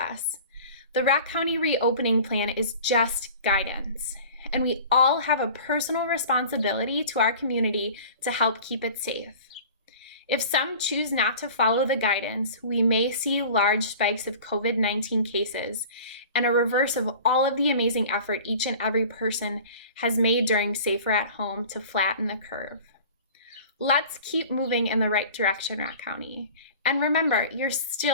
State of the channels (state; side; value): inverted; both; correlation -0.42